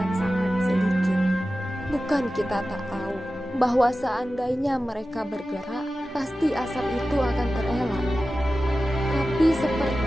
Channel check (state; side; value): normal; both; correlation 0.94